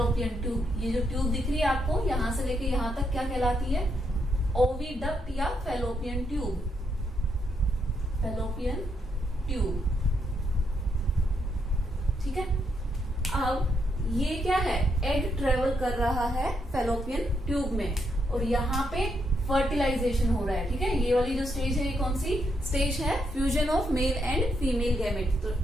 tube. ये जो ट्यूब दिख रही है आपको, यहां से लेके यहां तक क्या कहलाती है, ओविडक्ट या फेलोपियन ट्यूब। Fallopian tube. ठीक है, अब ये क्या है, एग ट्रेवल कर रहा है फेलोपियन ट्यूब में, और यहाँ पे फर्टिलाइजेशन हो रहा है। ठीक है, ये वाली जो स्टेज है, ये कौन सी स्टेज है, fusion of male and female gamete.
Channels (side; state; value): both; normal; correlation 0.78